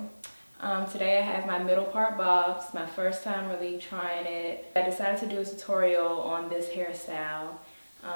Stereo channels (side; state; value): both; inverted; correlation -1.00